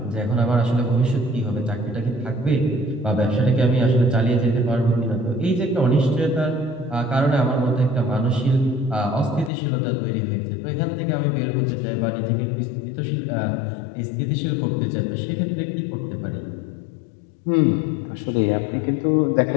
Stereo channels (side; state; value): right; drops out; at 9.5 s